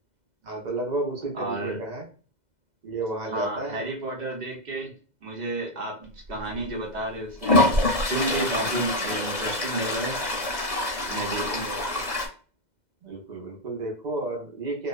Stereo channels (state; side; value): late; left; 2.0 ms